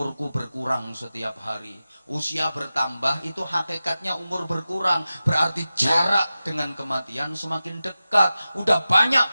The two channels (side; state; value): both; inverted; correlation -0.95